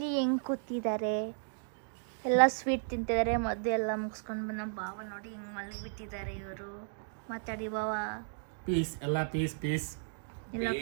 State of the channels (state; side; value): silent; left; digital silence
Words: ಹೆಂಗೆ ಕೂತಿದ್ದಾರೆ, ಎಲ್ಲ ಸ್ವೀಟ್ ತಿಂತಿದ್ದಾರೆ. ಮದ್ದು ಎಲ್ಲ ಮುಗಿಸ್ಕೊಂಡು ಬಂದು ನಮ್ಮ ಬಾವ ನೋಡಿ ಹಿಂಗೆ ಮಲಗಿಬಿಟ್ಟಿದ್ದಾರೆ. ಇವರು ಮಾತಾಡಿ ಬಾವ. ಪೀಸ್ ಎಲ್ಲ ಪೀಸ್ ಪೀಸ್ ಎಲ್ಲ